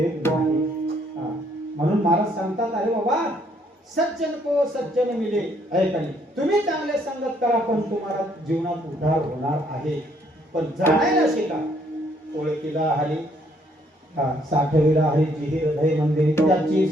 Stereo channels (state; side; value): normal; both; correlation 0.67